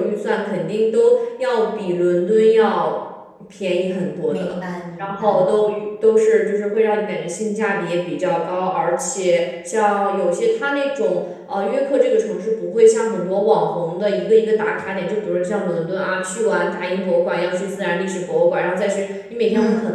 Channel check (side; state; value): both; identical; correlation 1.00